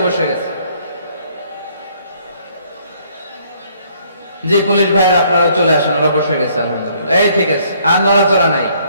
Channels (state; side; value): inverted; both; correlation -0.64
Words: বসে গেছে। জি পুলিশ ভাইরা আপনারাও চলে আসেন, ওরা বসে গেছে আলহামদুলিল্লাহ। এই ঠিক আছে, আর নড়াচড়া নাই।